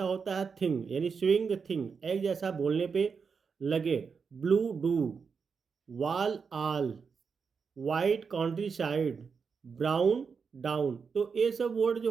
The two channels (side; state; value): left; quieter; 5.7 dB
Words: होता है थिंग, यानी स्विंग थिंग, एक जैसा बोलने पे लगे। Blue do, wall all, white countryside, brown down. तो ये सब वर्ड जो